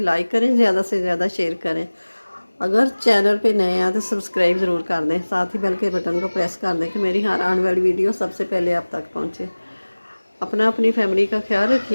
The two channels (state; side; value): inverted; both; correlation -1.00